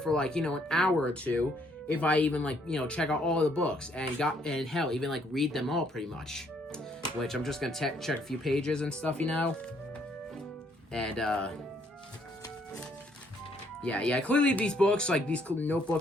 like, an hour or two if I even, like, check out all the books and hell, even, like, read them all pretty much. Which I'm just going to check a few pages and stuff, And, yeah, clearly these books, like, these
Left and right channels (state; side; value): normal; both; correlation 0.68